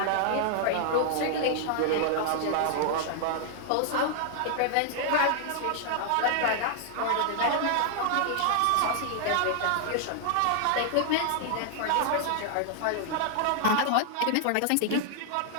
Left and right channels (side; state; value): both; different; correlation -0.01